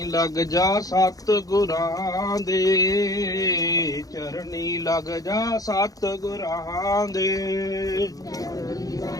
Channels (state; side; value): late; right; 0.17 ms